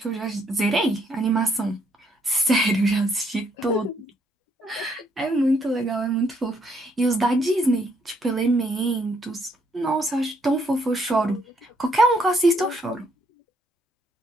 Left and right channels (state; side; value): normal; both; correlation 0.71